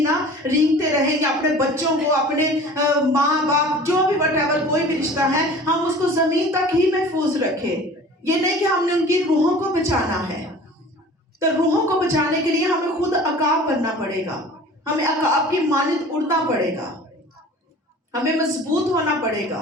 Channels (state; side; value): normal; both; correlation 0.43